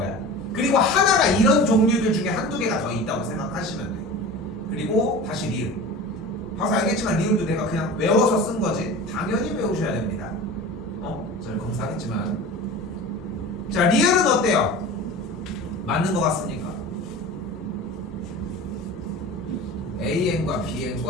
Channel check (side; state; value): both; normal; correlation 0.35